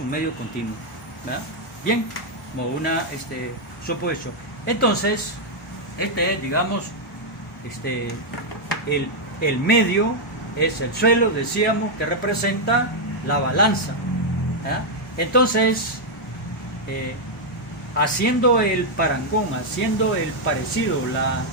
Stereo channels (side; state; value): both; normal; correlation -0.02